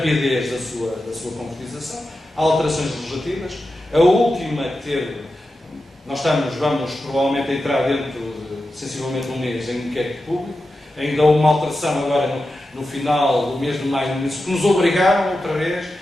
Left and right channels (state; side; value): normal; both; correlation 0.91